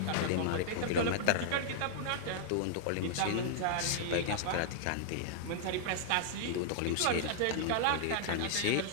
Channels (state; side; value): different; both; correlation -0.01